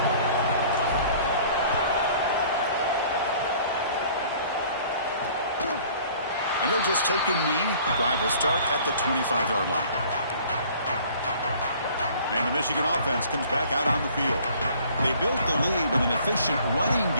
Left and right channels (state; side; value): inverted; both; correlation -0.53